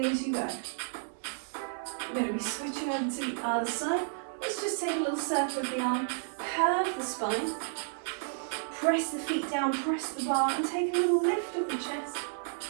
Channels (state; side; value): silent; left; digital silence